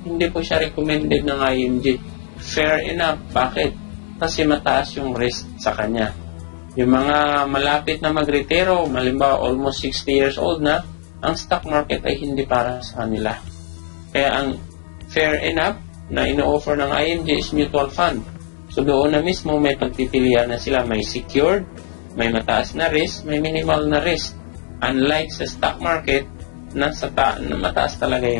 Hindi po siya recommended ng IMG. Fair enough. Bakit? Kasi mataas yung risk sa kanya. Yung mga malapit na mag-retiro, malimbawa almost 60 years old na, ang stock market ay hindi para sa kanila. Kaya ang fair enough na ino-offer ng IMG is mutual fund. So doon na mismo may pagpipilian na sila. May secured, may mataas na risk, may minimal na risk. Unlike sa stock market, na mataas talaga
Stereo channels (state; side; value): silent; right; digital silence